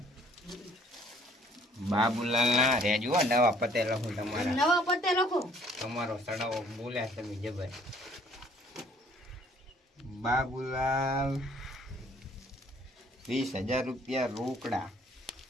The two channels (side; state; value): both; normal; correlation 0.58